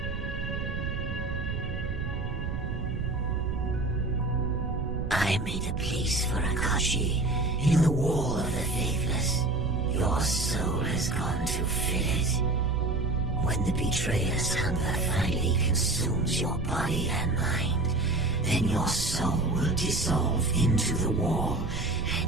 I made a place for Akashi in the wall of the faithless. Your soul has gone to fill it. When the betrayer's hunger finally consumes your body and mind, then your soul will dissolve into the wall,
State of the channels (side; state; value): right; noise; rumble, 4 dB below the sound